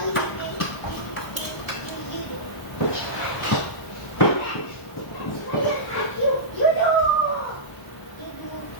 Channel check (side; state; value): right; late; 1.0 ms